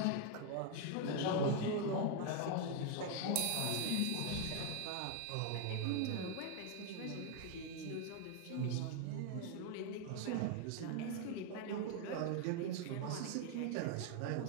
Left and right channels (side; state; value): both; different; correlation 0.01